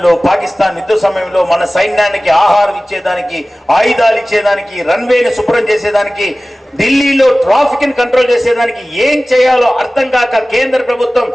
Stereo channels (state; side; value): normal; both; correlation 0.97